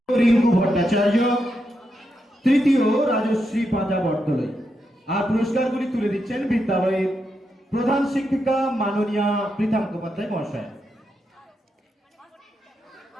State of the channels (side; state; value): both; normal; correlation 0.84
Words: রিঙ্কু ভট্টাচার্য, তৃতীয় রাজশ্রী পাঁজা বটতলায়। আর পুরস্কারগুলি তুলে দিচ্ছেন বিদ্যালয়ের প্রধান শিক্ষিকা মাননীয়া পৃথা মুখোপাধ্যায় মহাশয়।